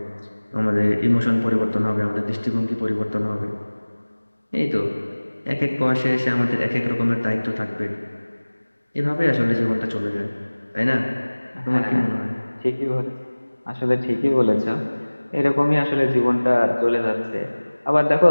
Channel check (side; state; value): both; inverted; correlation -1.00